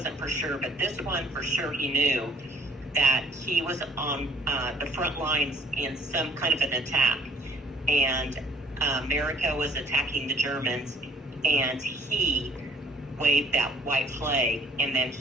for sure, but this one for sure he knew that he was on the front lines in some kind of an attack. And America was attacking the Germans, and he waved that white flag, and then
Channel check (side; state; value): both; normal; correlation 0.58